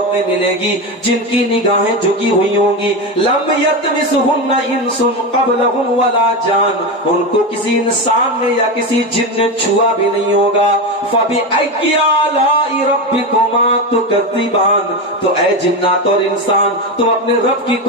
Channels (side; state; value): both; normal; correlation 0.16